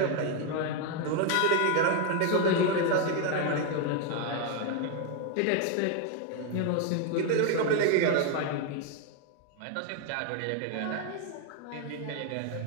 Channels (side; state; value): both; different; correlation 0.01